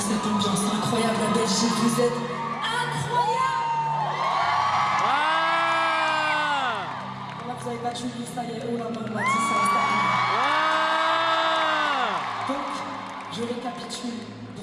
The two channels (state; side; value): identical; both; correlation 1.00